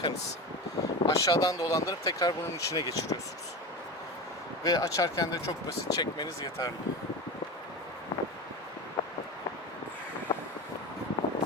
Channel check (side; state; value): both; normal; correlation 0.26